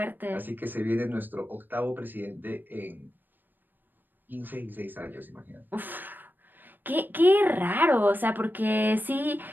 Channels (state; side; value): late; left; 0.092 ms